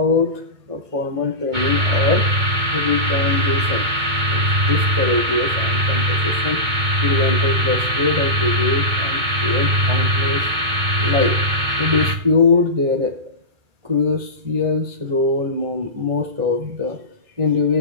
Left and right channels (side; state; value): left; late; 2.2 ms